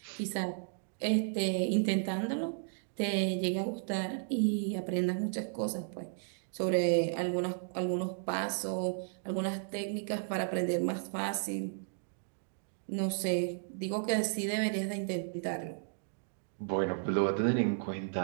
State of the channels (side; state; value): left; silent; digital silence